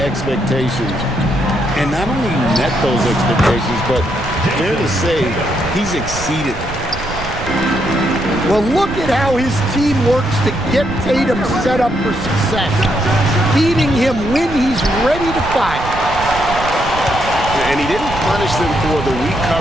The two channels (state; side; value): noise; right; rumble, 10 dB below the sound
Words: expectations and not only met those expectations, but fair to say, he's exceeded. Well, look at how his team works to get Tatum set up for success, feeding him when he's ready to fire. And he didn't punish them for the weak